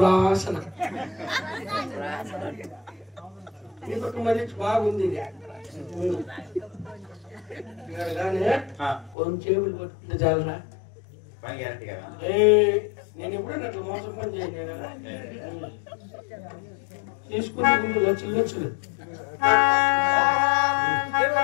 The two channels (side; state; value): right; drops out; at 9.2 s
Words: మరి బాగుంది కొంచెం చేపలు పట్టుకుంటే చాలరా. నేను ఎప్పుడైనా అట్లా మోసం పని చేయను కదా. తీసుకునే ముందు లక్షలు